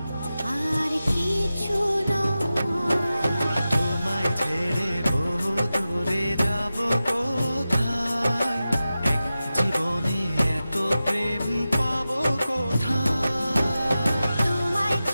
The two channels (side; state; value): both; inverted; correlation -0.94